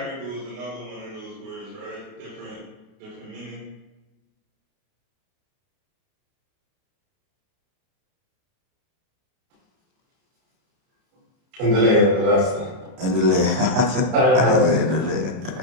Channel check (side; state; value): left; late; 31 ms